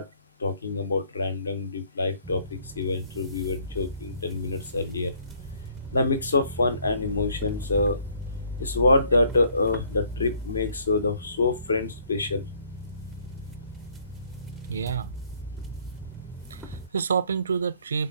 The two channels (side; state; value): both; inverted; correlation -0.62